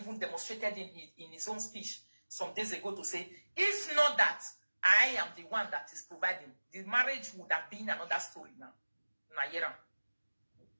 demonstrated in his own speech some days ago to say, if not that, I am the one that is providing, the marriage would have been another story now. Nayera.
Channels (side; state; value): both; inverted; correlation -1.00